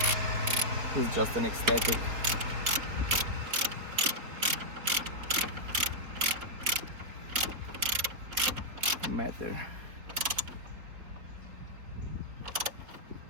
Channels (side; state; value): left; late; 4.3 ms